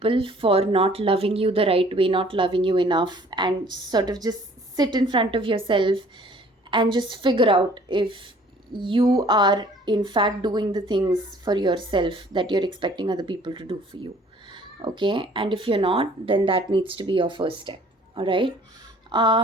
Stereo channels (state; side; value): normal; both; correlation 0.55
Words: for not loving you the right way, not loving you enough, and sort of just sit in front of yourself and just figure out if you are in fact doing the things for yourself that you're expecting other people to do for you. Okay, and if you're not, then that needs to be your first step. All right.